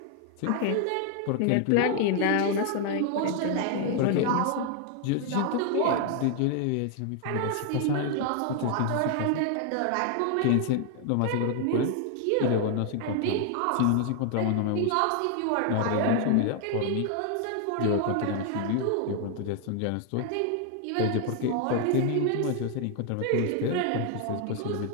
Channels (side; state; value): both; different; correlation 0.00